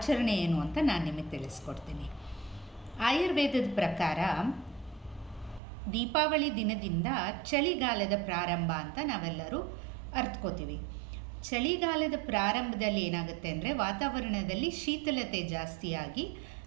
ಏನು ಅಂತ ನಾನು ನಿಮಗೆ ತಿಳಿಸ್ಕೊಡ್ತೀನಿ. ಆಯುರ್ವೇದದ ಪ್ರಕಾರ ದೀಪಾವಳಿ ದಿನದಿಂದ ಚಳಿಗಾಲದ ಪ್ರಾರಂಭ ಅಂತ ನಾವೆಲ್ಲರೂ ಅರ್ಥಕೋತೀವಿ. ಚಳಿಗಾಲದ ಪ್ರಾರಂಭದಲ್ಲಿ ಏನಾಗುತ್ತೆ ಅಂದರೆ ವಾತಾವರಣದಲ್ಲಿ ಶೀತಲತೆ ಜಾಸ್ತಿಯಾಗಿ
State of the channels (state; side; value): drops out; left; at 5.6 s